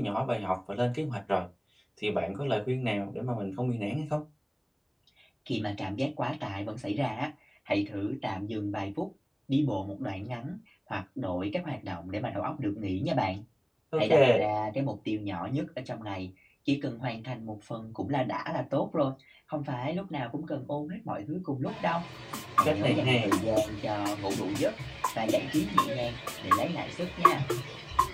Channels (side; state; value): both; identical; correlation 1.00